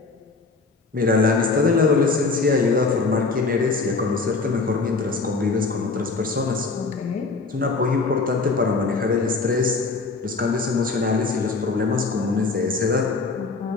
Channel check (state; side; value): quieter; right; 4.0 dB